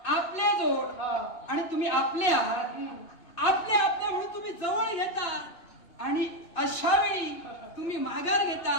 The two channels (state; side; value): late; right; 2.9 ms